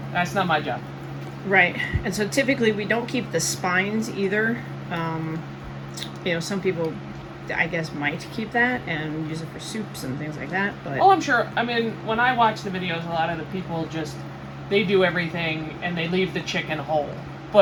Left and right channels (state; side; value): identical; both; correlation 1.00